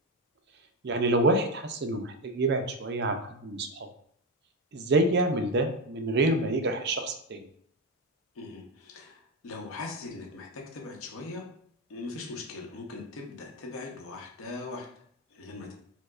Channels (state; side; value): normal; both; correlation 0.13